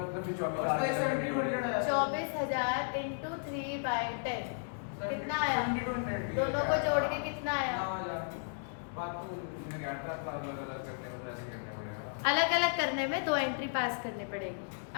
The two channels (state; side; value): silent; right; digital silence